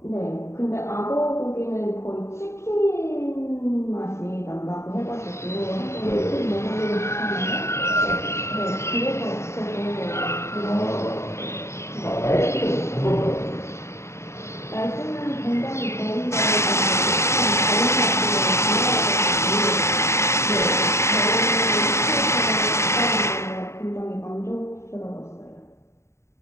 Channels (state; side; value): late; right; 0.13 ms